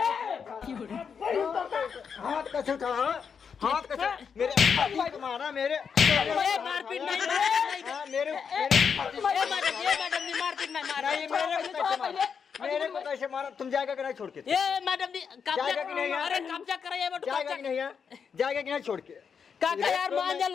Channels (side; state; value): right; quieter; 6.5 dB